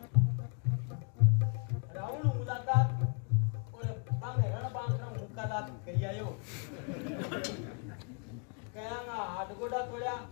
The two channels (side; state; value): right; quieter; 38.6 dB